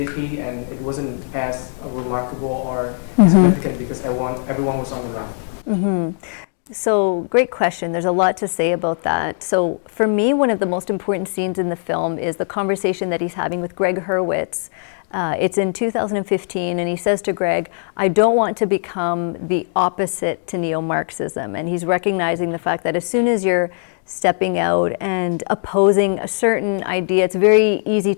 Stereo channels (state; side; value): silent; right; digital silence